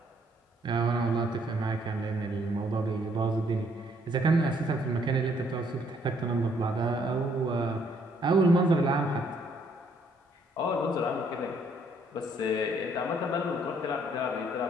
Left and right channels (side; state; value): both; normal; correlation 0.67